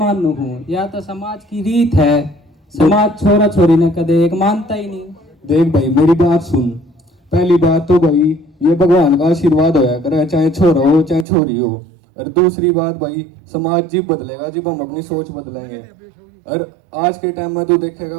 हूँ, या तो समाज की रीत है। समाज छोरा छोरी ने कदे एक मानता ही नहीं। देख भाई मेरी बात सुन। पहली बात तो भाई ये भगवान का आशीर्वाद होया करे, चाहे छोरा हो चाहे छोरी हो। और दूसरी बात भाई, समाज जब बदलेगा जब हम अपनी सोच बदलेंगे। और आज के टाइम में तो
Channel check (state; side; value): drops out; left; at 11.2 s